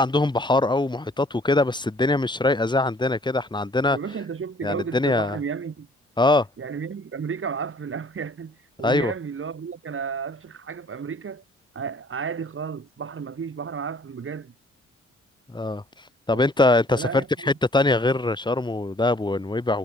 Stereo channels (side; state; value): both; normal; correlation 0.56